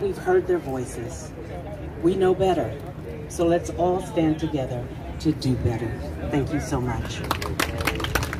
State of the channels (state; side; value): identical; both; correlation 1.00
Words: we've heard their voices, we know better. So let's all stand together to do better. Thank you so much.